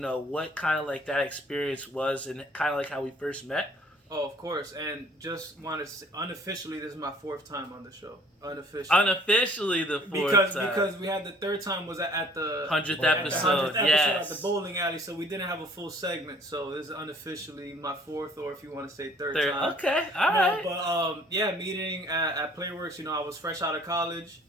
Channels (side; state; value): both; normal; correlation 0.56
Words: what kind of like that experience was and kind of like how we first met? Oh, of course. And just wanted to say, unofficially, this is my 4th time on the show. Unofficially the 4th time. Because we had the 3rd time was at the 100th episode. Yes. At the bowling alley, so we didn't have a full segment. So this is unofficially my 4th, or if you want to say 3rd time. Okay, all right. But meeting at Playworks. I was fresh out of college,